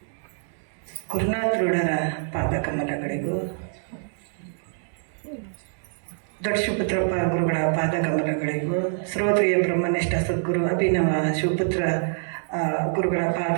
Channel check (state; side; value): silent; left; digital silence